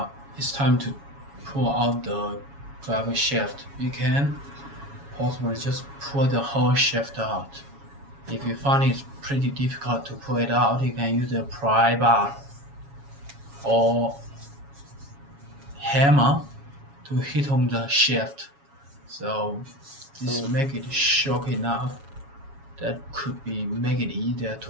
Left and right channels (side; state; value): left; late; 7.2 ms